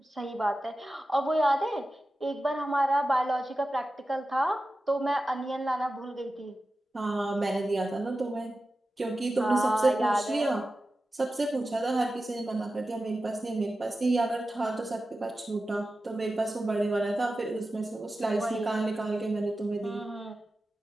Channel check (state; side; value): normal; both; correlation 0.93